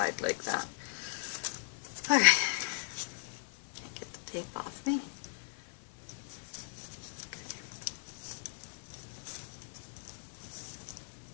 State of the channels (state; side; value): silent; right; 53 dB below the other